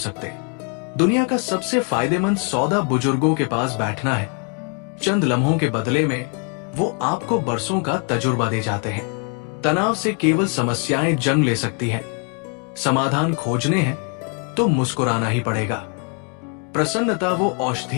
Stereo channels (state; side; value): quieter; right; 39.7 dB